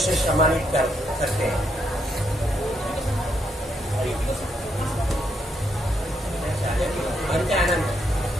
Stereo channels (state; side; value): normal; both; correlation 0.77